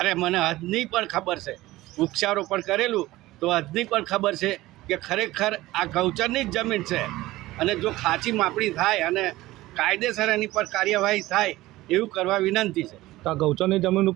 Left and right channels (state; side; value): quieter; left; 17.5 dB